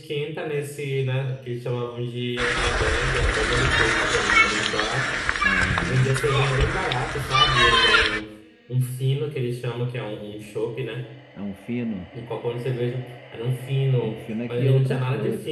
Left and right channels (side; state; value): both; identical; correlation 1.00